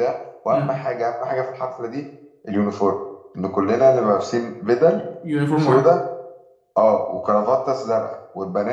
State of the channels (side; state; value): both; identical; correlation 1.00